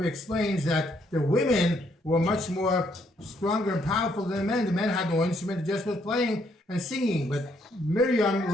explains that the women were much more stronger and powerful than the men. The men had no instrument, they just was playing and singing. But Miriam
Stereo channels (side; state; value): both; normal; correlation 0.71